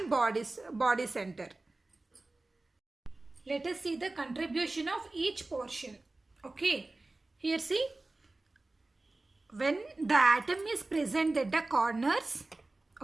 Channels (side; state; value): left; quieter; 3.0 dB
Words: body center. Let us see the contribution of each portion. Okay, here see, when the atom is present at the corners,